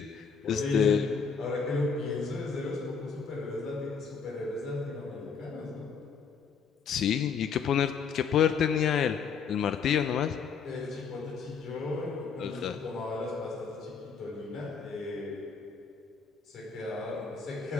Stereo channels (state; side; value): quieter; right; 6.0 dB